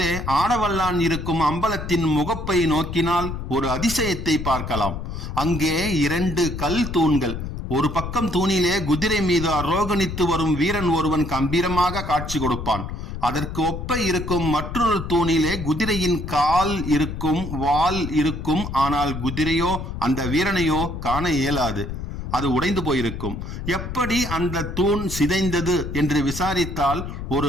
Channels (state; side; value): noise; left; rumble, 7 dB below the sound